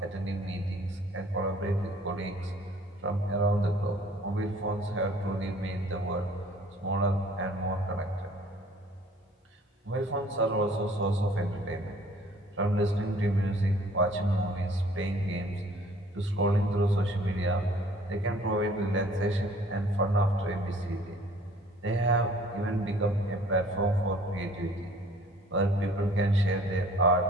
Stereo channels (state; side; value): normal; both; correlation 0.54